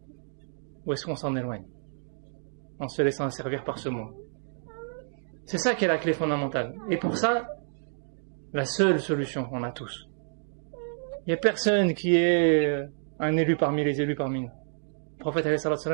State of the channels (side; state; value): left; silent; digital silence